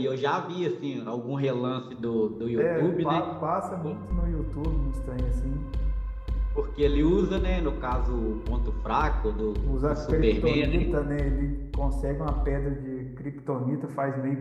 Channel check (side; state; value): both; identical; correlation 1.00